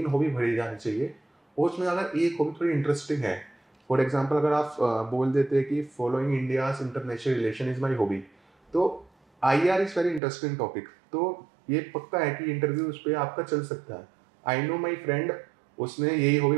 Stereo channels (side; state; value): left; drops out; at 10.2 s